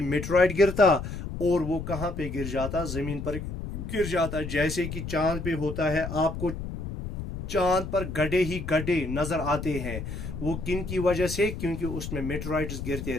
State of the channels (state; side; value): noise; left; rumble, 7 dB below the sound